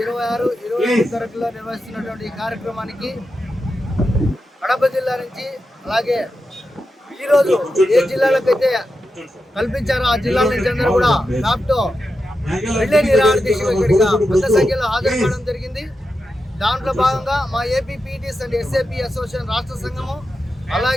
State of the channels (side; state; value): both; normal; correlation 0.89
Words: 27 తరగతిలో నిర్వహిస్తున్నటువంటి ఈ కార్యక్రమానికి కడప జిల్లా నుంచి అలాగే ఈరోజు ఏ జిల్లాలకైతే కల్పించారో ఆ జిల్లాల నుంచి అందరూ కూడా డాక్టర్ రిలే నిరాహార దీక్షలో ఇక్కడిగా పెద్ద సంఖ్యలో హాజరు కావడం జరిగింది. దాంట్లో భాగంగా మా AP PTS and SAP association రాష్ట్ర సంఘము